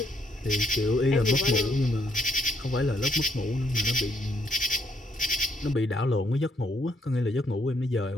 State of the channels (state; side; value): normal; both; correlation 0.71